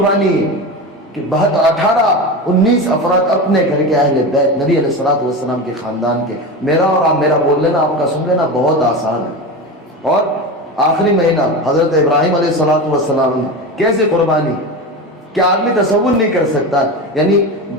ہے کہ 19 افراد اپنے گھر کے اہل بیت نبی علیہ الصلوۃ والسلام کے خاندان کے۔ میرا اور آپ میرا بول لینا، آپ کا سن لینا بہت آسان ہے۔ اور آخری مہینہ حضرت ابراہیم علیہ الصلوۃ والسلام نے کیسے قربانی، کیا آدمی تصور نہیں کر سکتا؟ یعنی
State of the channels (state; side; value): normal; both; correlation 0.24